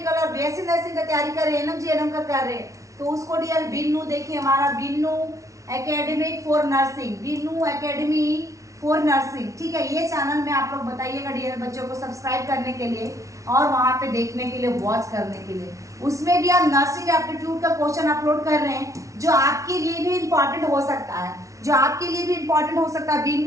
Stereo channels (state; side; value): late; left; 0.15 ms